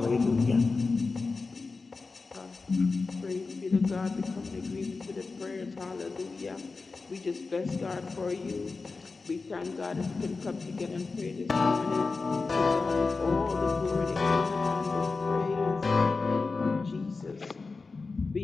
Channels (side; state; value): right; quieter; 4.1 dB